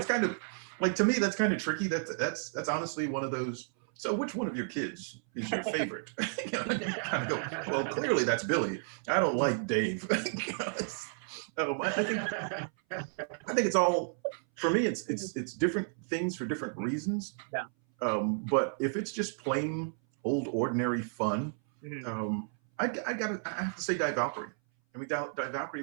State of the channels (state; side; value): silent; left; 56 dB below the other